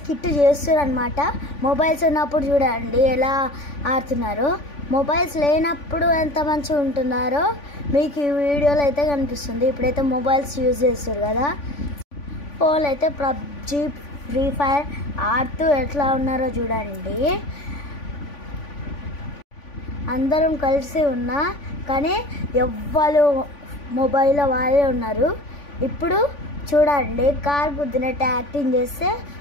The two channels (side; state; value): right; late; 3.5 ms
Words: చేస్తున్నారు అనమాట. మొబైల్స్ ఉన్నప్పుడు చూడండి ఎలా ఆడుతున్నారు, మొబైల్స్ లేనప్పుడు ఎంత మంచిగా ఉంటున్నారో మీకు ఈ వీడియోలో అయితే కనిపిస్తుంది. ఇప్పుడైతే మొబైల్స్ యూజ్ చేస్తారు కదా, ఫోన్లు అయితే పబ్జీ ఫ్రీ ఫైర్ ఆడుతూ ఎట్లా ఉన్నారో చూడండి. అందరం కలిసి ఉన్నా కానీ ఎవ్వరు మొబైల్లో వాళ్ళే ఉన్నారు. ఇప్పుడు చూడండి కార్ గుద్దినట్టు యాక్టింగ్ చేస్తే